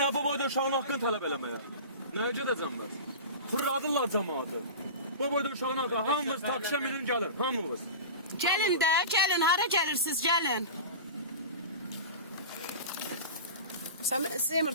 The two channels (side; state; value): both; inverted; correlation -0.30